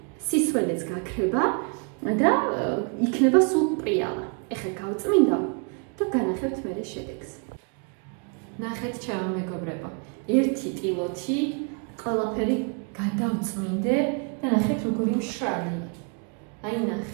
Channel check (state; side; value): quieter; left; 37.6 dB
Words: სისველეც გაქრება და იქნება სულ პრიალა. ეხლა გავწმინდა და განახევთ მერე შედეგს. ნახეთ ჩემო მეგობრებო, ერთი ტილოთი ყველაფერი გადავწმინდე და ნახეთ როგორი მშრალი. აი